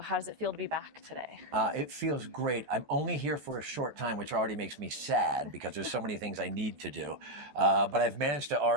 does it feel to be back today? It feels great. I'm only here for a short time, which already makes me sad because there's so many things I need to do. But I've managed to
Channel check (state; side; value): late; left; 14 ms